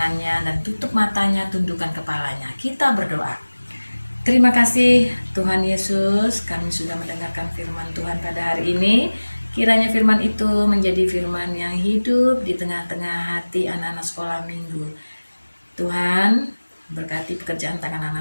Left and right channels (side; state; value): both; inverted; correlation -1.00